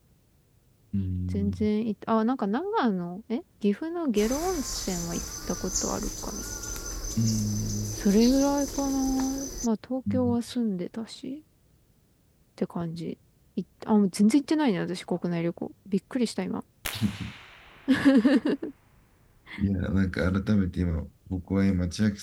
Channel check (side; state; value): both; identical; correlation 1.00